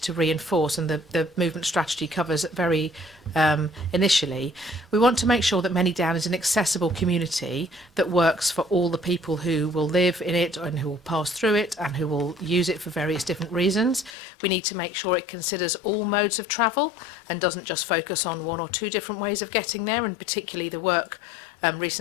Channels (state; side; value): drops out; right; at 14.1 s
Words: to reinforce, and the movement strategy covers very initially. We want to make sure that Manydown is an accessible community that works for all the people who will live in it and who will pass through it and who will use it for various different reasons. We need to make sure it considers all modes of travel and doesn't just focus on 1 or 2 different ways of getting there, and particularly the work